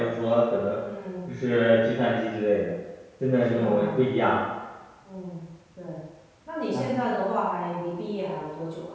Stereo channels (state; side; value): identical; both; correlation 1.00